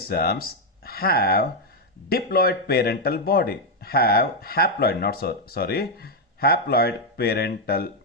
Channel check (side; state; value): both; normal; correlation 0.01